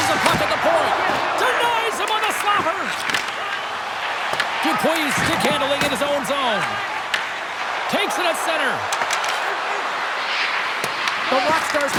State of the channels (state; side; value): identical; both; correlation 1.00